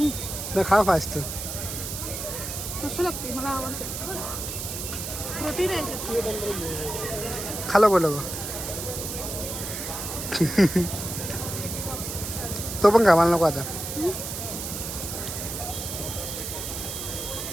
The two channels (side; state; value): right; noise; hiss, 6 dB below the sound